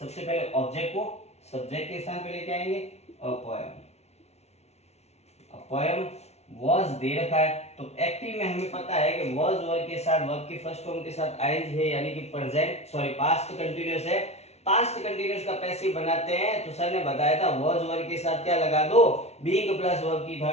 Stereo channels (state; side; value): late; right; 0.31 ms